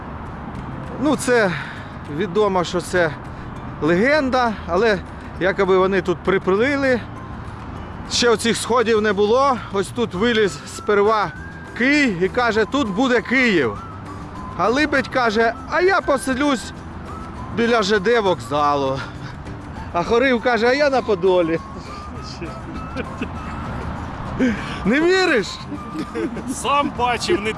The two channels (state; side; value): identical; both; correlation 1.00